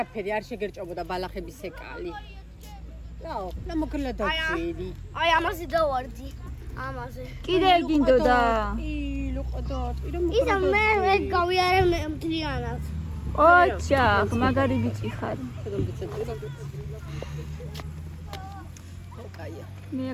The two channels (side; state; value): both; identical; correlation 1.00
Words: არ შეგერჭობოდა ბალახების ეკალი. რაო, მოკლა დავწიდი. აი ამაზე დავარდი. ამაზე. კიდე გინდოდა ისა მე გავიარე მთლიანად. ოჩახ მაგარი ბიჭი ხარ კაია. მე